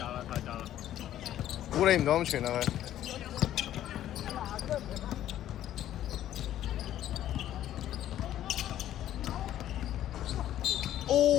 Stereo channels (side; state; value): right; quieter; 12.2 dB